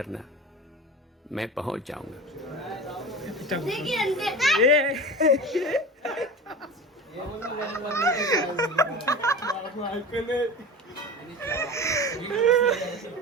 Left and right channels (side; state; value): both; normal; correlation 0.31